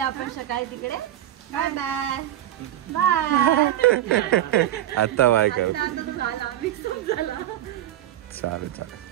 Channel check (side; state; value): left; quieter; 12.7 dB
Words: आपण सकाळी तिकडे. Bye bye bye. आता बाय कर. चालेल चालेल.